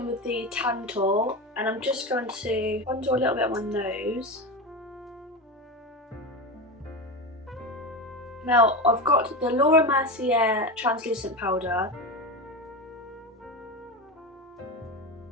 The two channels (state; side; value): normal; both; correlation 0.21